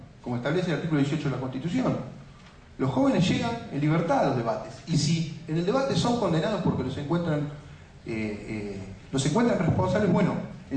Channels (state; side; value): identical; both; correlation 1.00